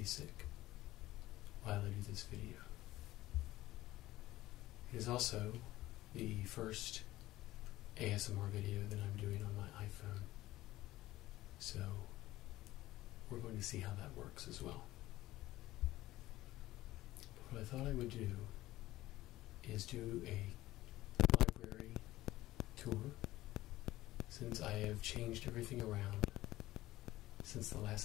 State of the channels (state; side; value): quieter; right; 16.5 dB